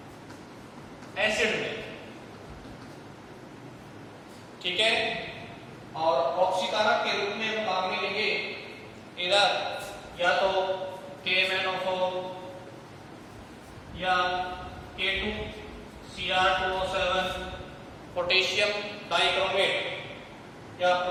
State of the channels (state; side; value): identical; both; correlation 1.00